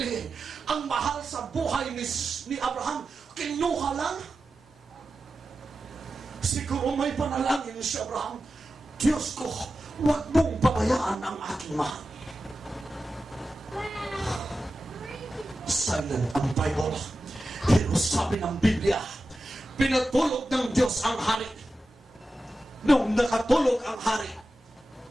Ang mahal sa buhay ni Abraham, kinuha lang. Siguro may panalangin si Abraham, Diyos ko, huwag mong pabayaan ang aking mahal. Silent ang Bible. Pero sabi ng Biblia, pinatulog ng Diyos ang hari. Nung nakatulog ang hari,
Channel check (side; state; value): both; normal; correlation 0.93